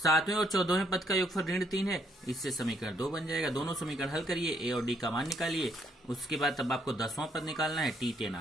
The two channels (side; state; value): both; normal; correlation 0.70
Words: और 14वें पद का योगफल ऋण 3 है, इससे समीकरण 2 बन जाएगा। दोनों समीकरण हल करिए, ए और डी का मान निकालिए। उसके बाद तब आपको 10वां पद निकालना है, T10